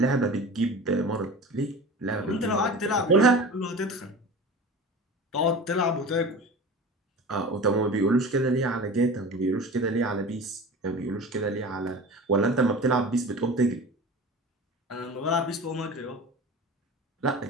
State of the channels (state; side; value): normal; both; correlation 0.35